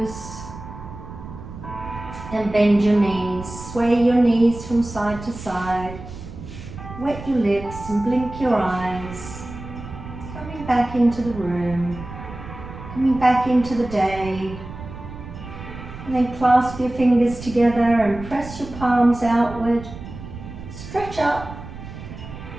and bend your knees. Sway your knees from side to side. Wet your lips and blink your eyes. Coming back into the room. Coming back into the day. And then clasp your fingers together and press your palms outward. Stretch up.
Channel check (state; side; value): noise; right; rumble, 12 dB below the sound